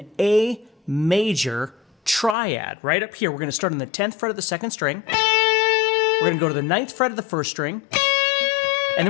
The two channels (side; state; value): right; drops out; at 2.4 s